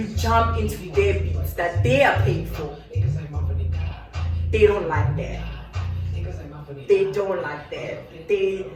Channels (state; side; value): identical; both; correlation 1.00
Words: jump into their beats that they are paying for. They don't like that. They don't like that.